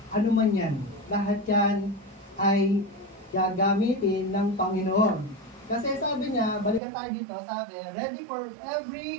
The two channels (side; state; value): left; drops out; at 6.8 s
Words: Ano man yan. Lahat yan ay gagamitin ng Panginoon. Kasi sabi niya, balikan tayo dito, sabi, ready for